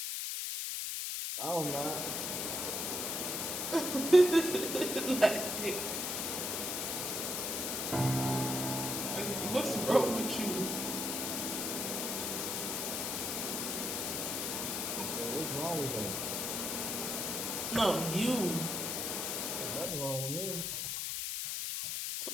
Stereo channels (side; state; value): left; noise; hiss, 1 dB below the sound